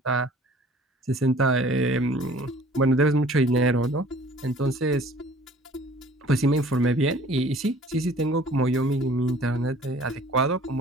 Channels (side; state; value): both; normal; correlation 0.51